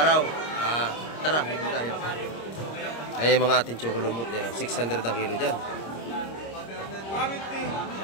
Tara, dito tayo. Ay, mga ating chocolumut. 600 ang kilo dyan.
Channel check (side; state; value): right; late; 26 ms